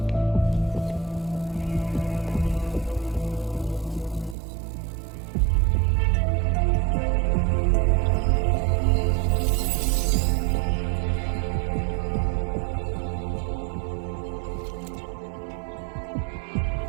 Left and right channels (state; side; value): drops out; left; at 4.4 s